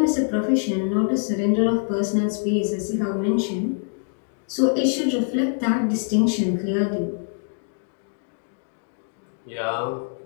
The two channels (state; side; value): silent; right; 62 dB below the other